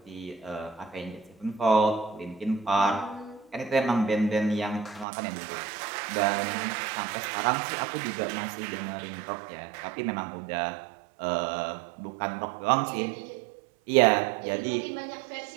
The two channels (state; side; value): drops out; left; at 5.1 s